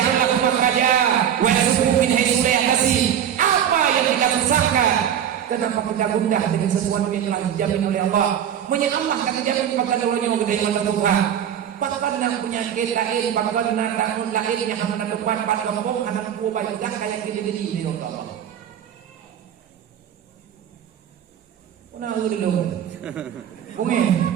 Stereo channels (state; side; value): quieter; left; 9.5 dB